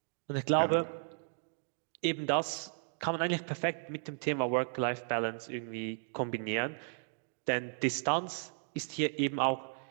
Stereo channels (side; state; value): left; silent; 55 dB below the other